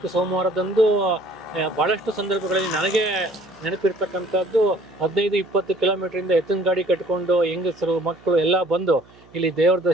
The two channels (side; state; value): right; noise; hum, 26 dB below the sound